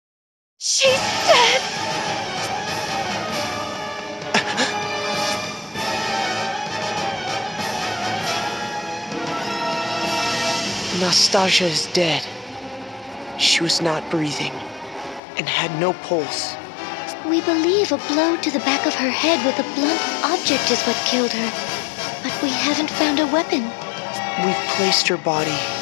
She's dead. Nastasia is dead. She was not breathing and had no pulse. We believe a blow to the back of her head with a blunt object is what killed her. But we haven't found a weapon. We've placed her body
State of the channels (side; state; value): right; drops out; at 15.2 s